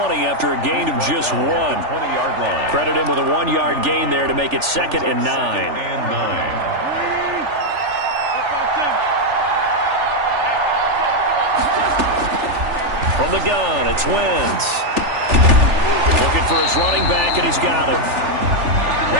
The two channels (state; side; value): late; left; 3.4 ms